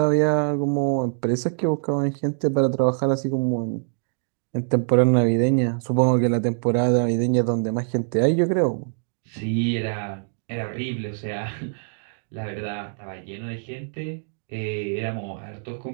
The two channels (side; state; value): left; silent; digital silence